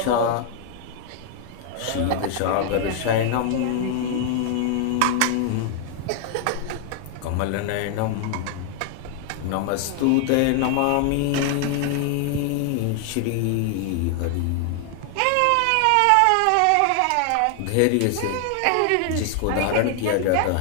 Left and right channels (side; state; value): both; different; correlation 0.00